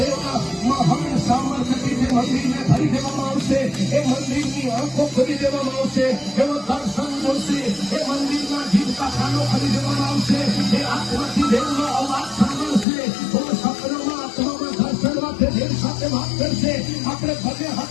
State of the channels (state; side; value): drops out; right; at 12.9 s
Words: મહાન સામર્થ્યથી જે મંદિરને ભરી દેવામાં આવશે. એ મંદિરની આંખો ખોલી દેવામાં આવશે. એનો દર્શન મળશે. એ મંદિરના જીવતા કાનો ખોલી દેવામાં આવશે. એ આત્માથી દેવનો અવાજ સાંભળશે. ઓ સપનામાં, આત્મામાં, દર્શનમાં તે દેવ સાથે વાત કરશે. આપણે ભલે